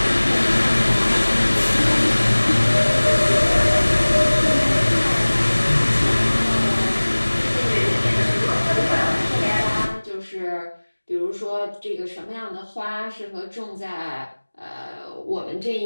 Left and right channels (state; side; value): inverted; both; correlation -1.00